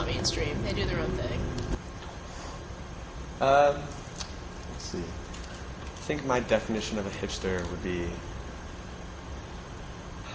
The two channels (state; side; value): identical; both; correlation 1.00